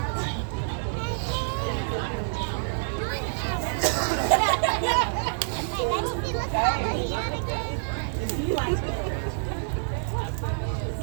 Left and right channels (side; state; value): left; silent; digital silence